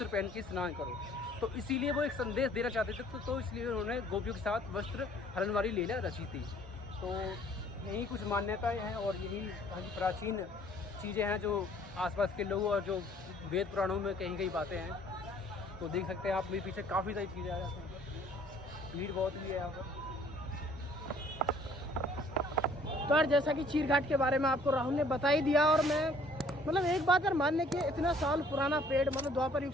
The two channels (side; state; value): both; normal; correlation 0.58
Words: पहन के स्नान करो। तो इसीलिए वो एक संदेश देना चाहते थे, तो इसलिए उन्होंने गोपियों के साथ वस्त्र हरण वाली लीला रची थी। तो यही कुछ मान्यताएं हैं और यही प्राचीन चीज़ें हैं जो आसपास के लोग और जो वेद पुराणों में कहीं कहीं बातें हैं। तो देख सकते हैं आप मेरे पीछे काफ़ी सारी चीज़ें आ जाती हैं, भीड़ बहुत भी है यहाँ पर। तो यार जैसा कि चीर घाट के बारे में आपको राहुल ने बता ही दिया, और मैं मतलब एक बात यार मानने की, इतना साल पुराना पेड़, मतलब द्वापर युग